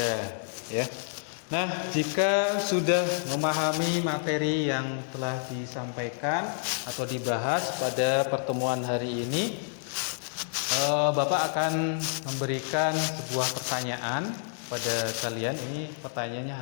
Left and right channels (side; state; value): right; silent; digital silence